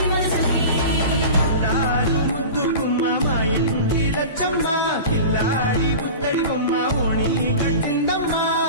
మనసుకి ముద్దు బొమ్మ మా ఇంటి లచ్చమ్మ పిల్లాడి పుత్తడి బొమ్మ ఓణి కట్టిందమ్మా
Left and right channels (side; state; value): both; inverted; correlation -0.33